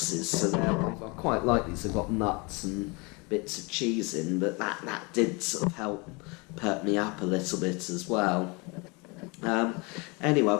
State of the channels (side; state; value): right; quieter; 28.5 dB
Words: So I quite like these. I've got nuts and bits of cheese in, but that did sort of help perk me up a little bit as well. Anyway,